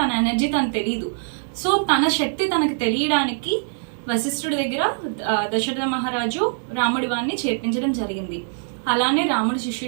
ఎనర్జీ తనకు తెలియదు. సో తన శక్తి తనకు తెలియడానికి వశిష్ఠుడి దగ్గర దశరథ మహారాజు రాముడి వారిని చేర్పించడం జరిగింది. అలానే రాముడు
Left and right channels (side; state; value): left; silent; digital silence